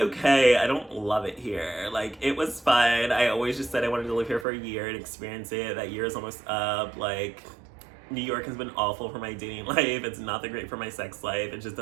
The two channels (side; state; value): left; drops out; at 4.5 s